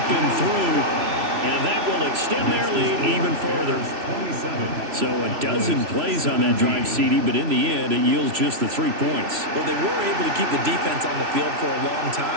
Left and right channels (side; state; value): left; late; 3.0 ms